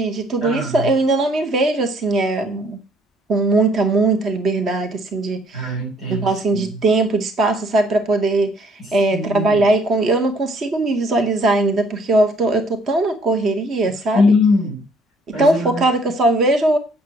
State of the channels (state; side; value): normal; both; correlation 0.62